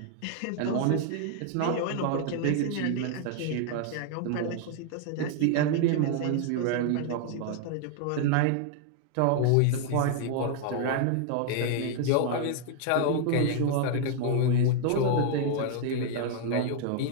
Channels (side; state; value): both; different; correlation 0.00